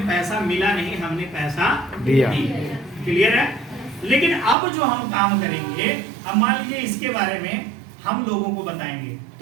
पैसा मिला नहीं, हमने पैसा दिया। क्लियर है? लेकिन अब जो हम काम करेंगे, अब मान लीजिए इसके बारे में हम लोगों को बताएंगे,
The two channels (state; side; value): drops out; left; at 4.5 s